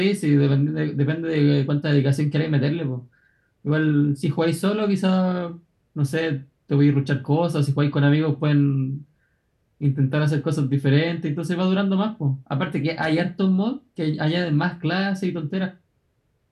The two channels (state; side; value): identical; both; correlation 1.00